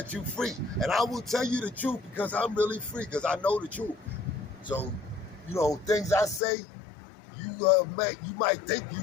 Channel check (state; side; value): drops out; right; at 6.4 s